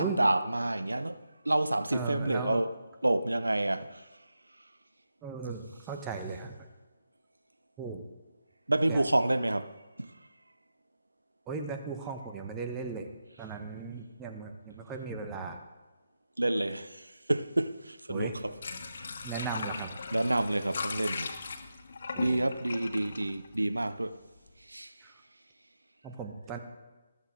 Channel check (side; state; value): both; inverted; correlation -0.89